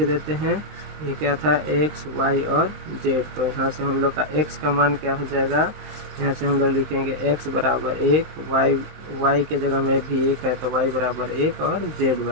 हैं, ये क्या था x y और z। तो यहाँ से हम लोग का x का मान क्या हो जाएगा, यहाँ से हम लोग लिखेंगे x बराबर 1, y के जगह में भी 1 है तो y बराबर 1 और z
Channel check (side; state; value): left; late; 19 ms